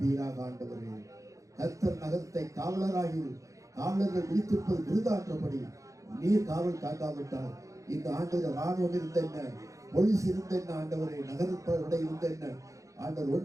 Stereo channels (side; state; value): left; late; 0.16 ms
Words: ஆண்டவரே. கர்த்தர் நகரத்தை காவலராகி காவலர்கள் விழித்திருப்பது விருதான்றபடி நீர் காவல் காக்காவிட்டால் இந்த ஆண்டு ராணுவம் இருந்த என்ன, போலீஸ் இருந்த என்ன ஆண்டவரே, நகரப்படை இருந்த என்ன ஆண்டவர்,